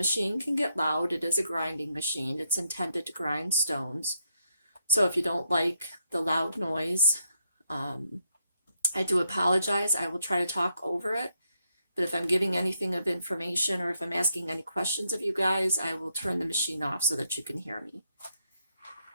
can get loud. It is a grinding machine. It's intended to grind stones. So if you don't like the loud noise, I do apologize. I will try to talk over it. But if I'm giving anything of information or if I'm asking any questions of you guys, I will turn the machine off so that you can hear me.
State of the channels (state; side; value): inverted; both; correlation -0.78